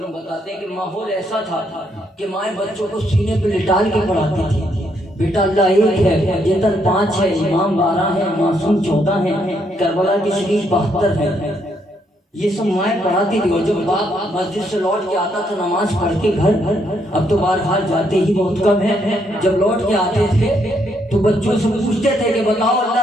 بتاتے ہیں کہ ماحول ایسا تھا کہ مائیں بچوں کو سینے پہ لٹال کے پڑھاتی تھی۔ بیٹا اللہ ایک ہے، جتن 5 ہے، امام 12 ہے، معصوم 14 ہے، کربلا کی شریف 72 ہے، یہ سب مائیں پڑھاتی تھی۔ اور جب باپ مسجد سے لوٹ کے آتا تھا نماز پڑھ کے گھر، اب تو بہرحال جاتے ہی بہت کم ہے، جب لوٹ کے آتے تھے تو بچوں سے پوچھتے تھے کہ بتاؤ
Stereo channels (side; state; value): both; normal; correlation 0.74